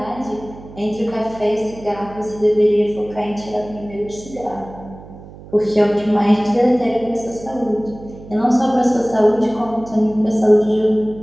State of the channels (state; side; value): noise; right; hum, 17 dB below the sound